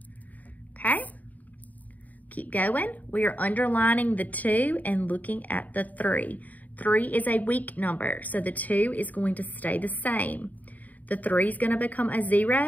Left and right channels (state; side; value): late; right; 0.077 ms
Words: Okay? Keep going. We are underlining the 2 and looking at the 3. 3 is a weak number, so the 2 is going to stay the same. The 3 is going to become a